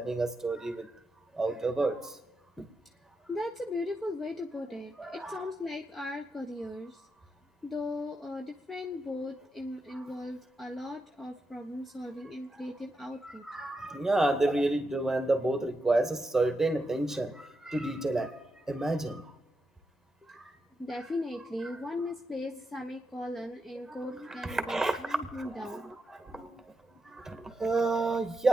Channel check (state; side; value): normal; both; correlation 0.86